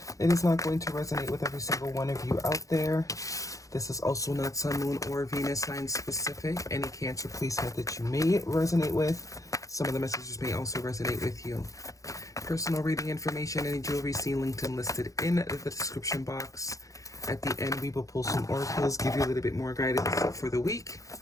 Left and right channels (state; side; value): late; right; 0.16 ms